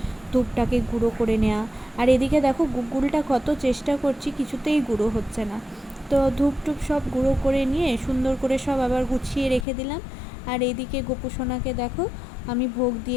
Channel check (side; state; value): right; drops out; at 9.7 s